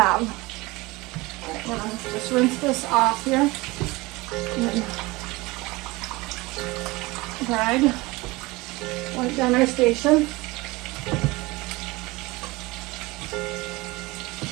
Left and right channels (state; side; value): quieter; left; 22.3 dB